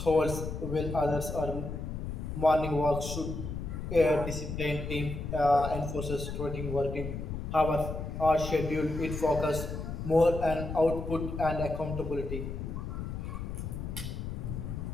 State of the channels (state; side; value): noise; left; rumble, 5 dB below the sound